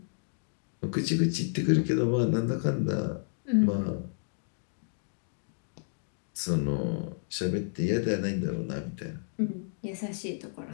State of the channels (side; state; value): right; silent; digital silence